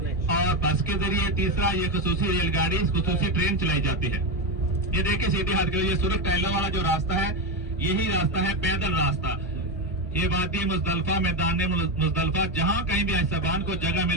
और बस के जरिए, तीसरा ये खसूसी रेलगाड़ी खसूसी ट्रेन चलाई जाती है। ये देखिए सीधे हाथ के, ये सूरत टाइला वाला जो रास्ता है यही रास्ता है पैदल रास्ता। ये वादी मुजदलफा, मैदान मुजदलफा, जहां कहीं भी साहबान को जगह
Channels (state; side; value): normal; both; correlation 0.12